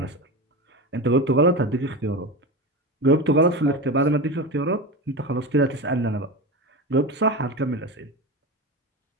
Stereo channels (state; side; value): normal; both; correlation 0.24